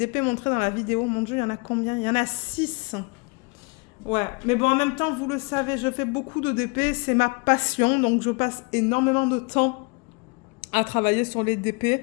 montrés dans la vidéo. Mon Dieu, il y en a combien? Il y en a 6. Ouais, mais bon, en même temps, vous le savez, je fais beaucoup de DP, c'est ma passion, donc je passe énormément de temps à travailler sur les DP.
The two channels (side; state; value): right; quieter; 31.2 dB